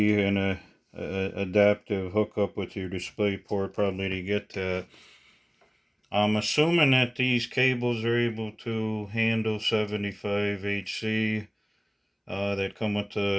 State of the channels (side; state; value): both; identical; correlation 1.00